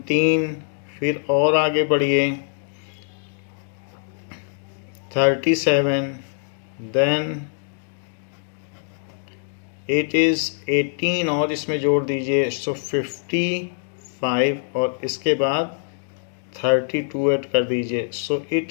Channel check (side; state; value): right; silent; digital silence